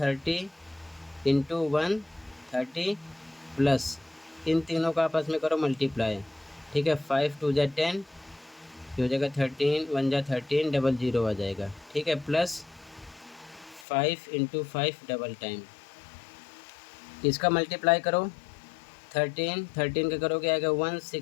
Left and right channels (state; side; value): drops out; right; at 13.9 s